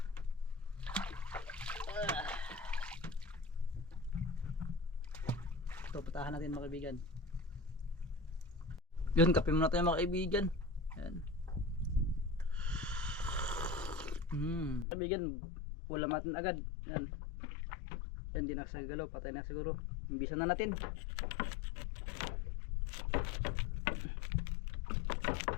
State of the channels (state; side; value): drops out; right; at 14.9 s